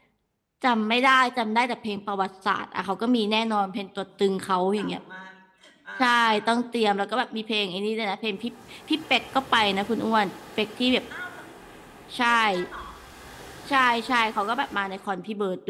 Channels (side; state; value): both; identical; correlation 1.00